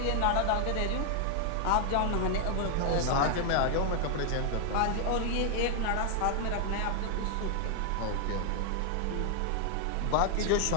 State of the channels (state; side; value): different; both; correlation 0.00